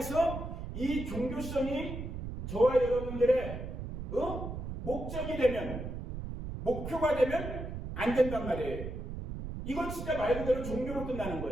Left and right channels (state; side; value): noise; right; rumble, 7 dB below the sound